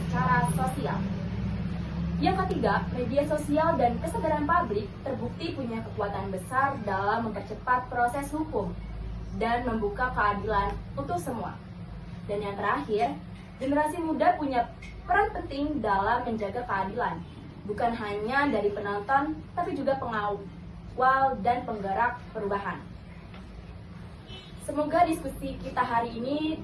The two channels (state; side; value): identical; both; correlation 1.00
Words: sosial. Yang ketiga, media sosial dan kesadaran publik terbukti punya kekuatan besar dalam mempercepat proses hukum dan membuka keadilan untuk semua. Dan yang terakhir, generasi muda punya peran penting dalam menjaga keadilan, bukan hanya dari penonton, tapi juga pengawal dan penggerak perubahan. Semoga diskusi kita hari ini